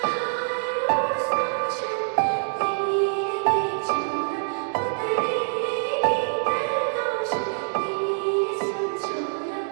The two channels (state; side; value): silent; left; digital silence